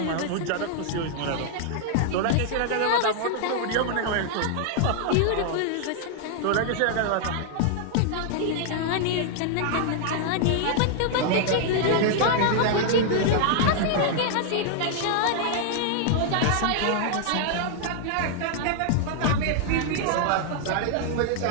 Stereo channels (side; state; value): both; different; correlation 0.00